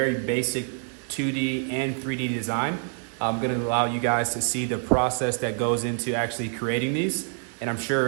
basic 2D and 3D design. I'm gonna allow you guys to see the process that goes into actually creating these. And I'm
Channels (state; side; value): silent; left; 56 dB below the other